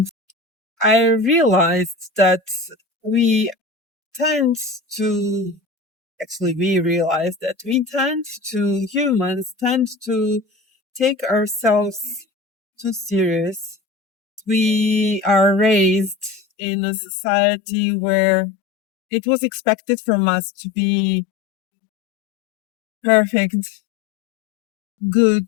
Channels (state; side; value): drops out; right; at 16.4 s